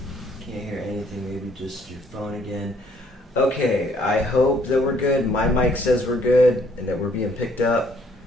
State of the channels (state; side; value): normal; both; correlation 0.64